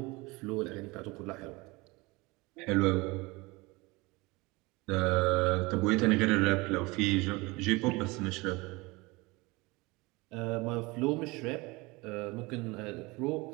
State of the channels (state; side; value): quieter; left; 24.1 dB